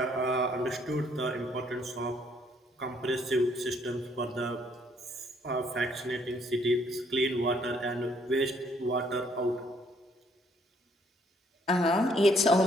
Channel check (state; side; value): normal; both; correlation 0.66